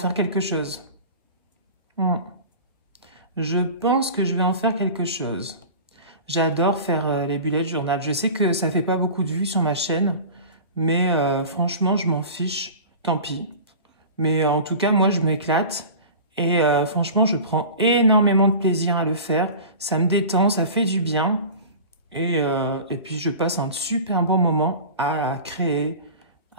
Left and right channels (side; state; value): both; inverted; correlation -0.36